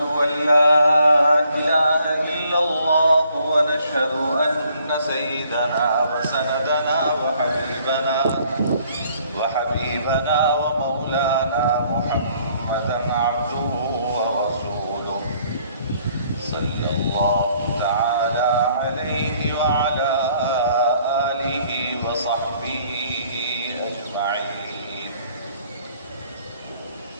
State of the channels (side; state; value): both; inverted; correlation -0.63